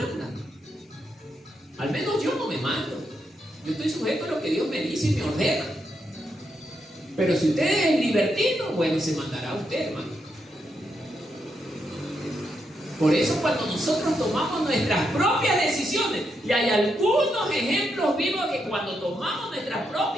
Al menos yo no me mando. Yo estoy sujeto a lo que Dios me dice y me ordena. Pero si usted es libertino, bueno, se mandará usted, hermano. Por eso cuando nosotros tomamos nuestras propias decisiones, y hay algunos ejemplos vivos que cuando tomamos nuestras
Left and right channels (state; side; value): normal; both; correlation 0.82